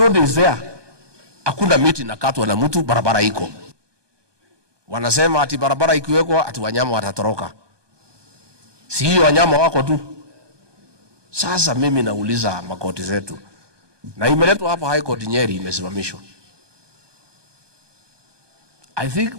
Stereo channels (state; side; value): late; left; 1.2 ms